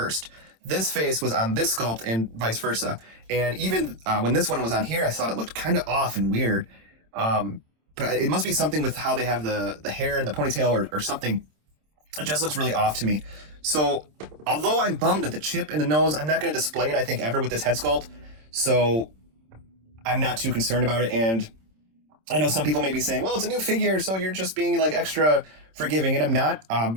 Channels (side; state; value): left; late; 26 ms